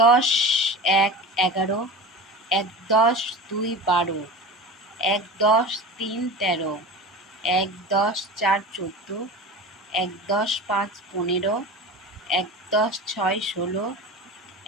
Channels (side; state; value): both; normal; correlation 0.32